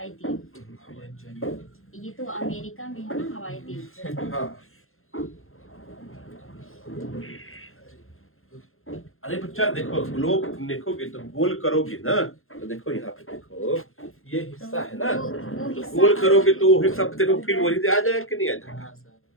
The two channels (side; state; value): right; late; 0.61 ms